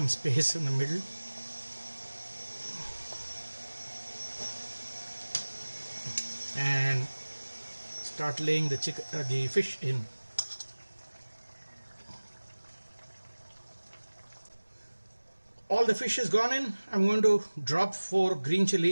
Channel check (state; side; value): inverted; both; correlation -1.00